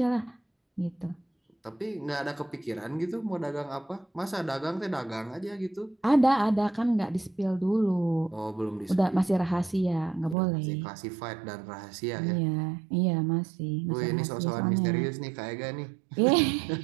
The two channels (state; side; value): drops out; left; at 10.4 s